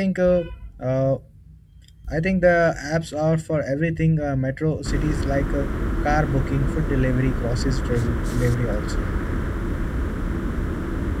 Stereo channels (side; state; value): both; identical; correlation 1.00